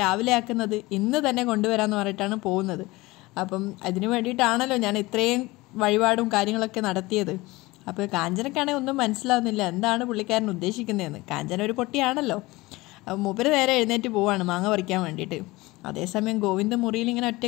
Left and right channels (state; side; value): quieter; right; 21.0 dB